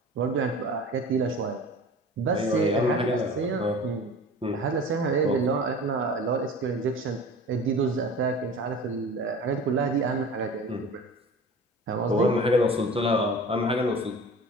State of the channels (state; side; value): normal; both; correlation 0.39